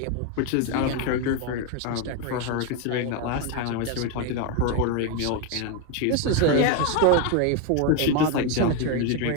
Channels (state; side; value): different; both; correlation 0.01